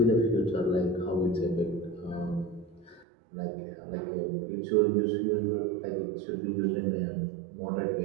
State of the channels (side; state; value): left; drops out; at 3.1 s